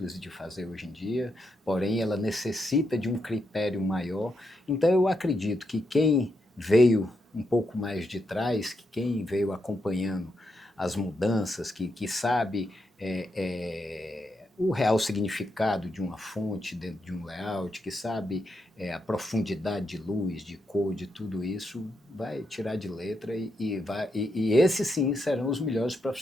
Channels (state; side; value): normal; both; correlation 0.82